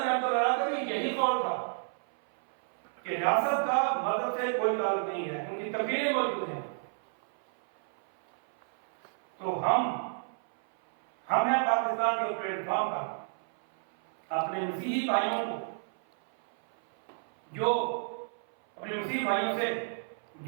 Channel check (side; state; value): left; silent; 57 dB below the other